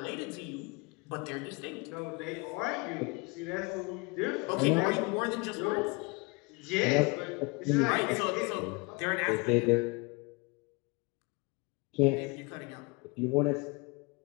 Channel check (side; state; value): right; quieter; 28.1 dB